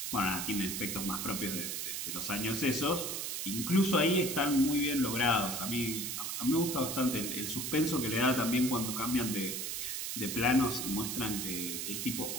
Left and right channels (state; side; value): noise; right; hiss, 3 dB below the sound